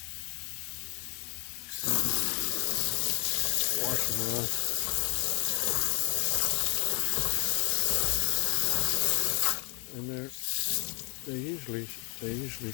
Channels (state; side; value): quieter; right; 34.0 dB